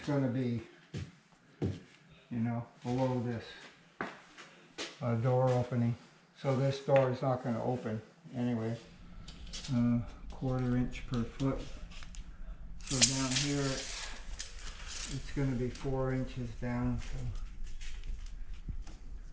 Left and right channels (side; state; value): both; identical; correlation 1.00